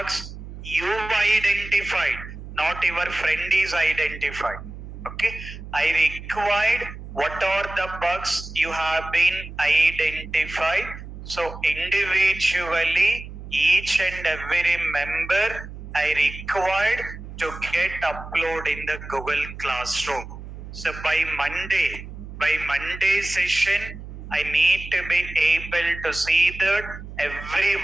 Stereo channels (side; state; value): right; noise; hum, 12 dB below the sound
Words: You identified, not your friend is identified. Okay, I required what are the bugs you have been identified. So individually, each and every member I required to get upload in the Google Classroom. So by Monday session, I need to be able to see that